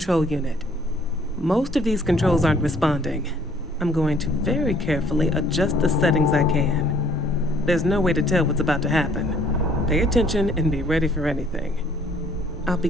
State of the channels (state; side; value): normal; both; correlation 0.60